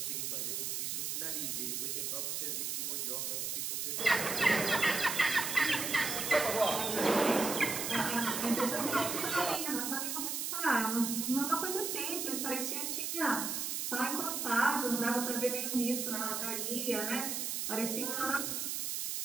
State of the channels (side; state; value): right; noise; hiss, 2 dB below the sound